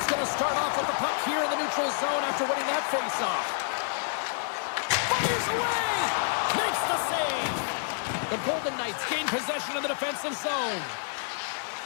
going to start off with the puck here in the neutral zone after winning that face-off. Fires away! Makes the save! The Golden Knights gain possession of the defensive zone.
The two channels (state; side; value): silent; right; digital silence